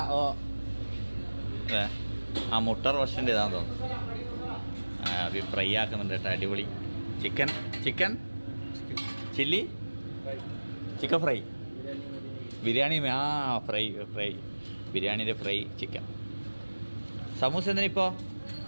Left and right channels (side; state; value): both; inverted; correlation -1.00